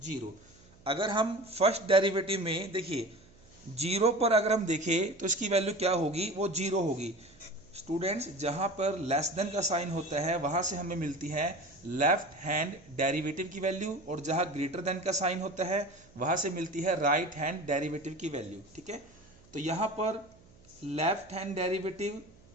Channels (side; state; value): right; noise; hum, 26 dB below the sound